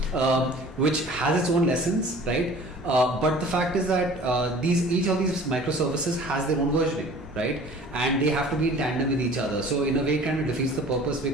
which has its own lessons, right? But the fact is that each of these microservices has their own versioning, right? And they have to be in tandem with each other. So in a way, it kind of defeats the purpose,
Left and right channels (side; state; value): both; normal; correlation 0.46